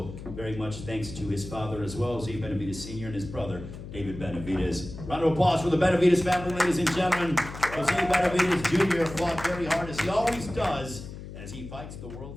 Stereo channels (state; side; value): noise; left; hum, 12 dB below the sound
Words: very much thanks to his father as well, Jose Benavidez Sr. and his brother, David Benavidez. Round of applause for the Benavidez family, ladies and gentlemen. Jose Benavidez Jr. fought very hard, as he always does, as he fights the